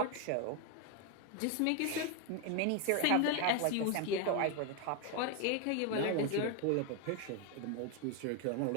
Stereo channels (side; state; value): both; different; correlation 0.01